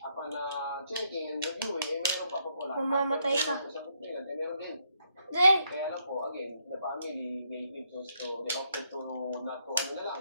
checking and reviewing, meron pa po wala. Mamamatay ka. Meron din. Hindi. Kaya lang po, again, the family, they chose to, they opted to not to, na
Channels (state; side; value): inverted; both; correlation -0.74